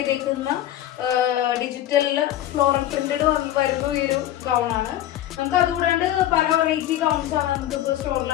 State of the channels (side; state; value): right; quieter; 13.0 dB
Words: ഡിജിറ്റൽ ഫ്ലോറൽ പ്രിന്റഡ് വരുന്ന ഈ ഒരു ഗൗൺ ആണ്. നമുക്ക് അതുകൂടാണ്ട് പല വെറൈറ്റി ഗൗൺസ് ആണ് നമുക്കിപ്പോൾ സ്റ്റോറിൽ